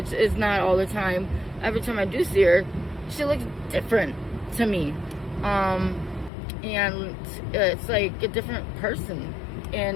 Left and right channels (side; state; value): right; drops out; at 6.3 s